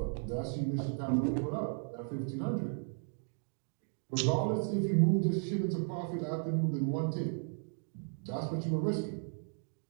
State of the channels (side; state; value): left; silent; 54 dB below the other